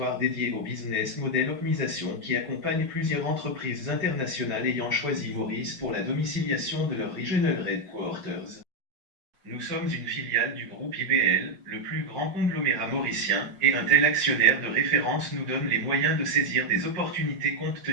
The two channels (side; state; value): left; late; 5.6 ms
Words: dédié au business model optimisation qui accompagne plusieurs entreprises internationales ayant choisi Maurice pour la domiciliation de leur Regional Headquarters. Nous sommes une filiale du groupe IBL, le plus grand conglomérat mauricien, et un tel actionnaire de référence nous donne les moyens de saisir des opportunités compte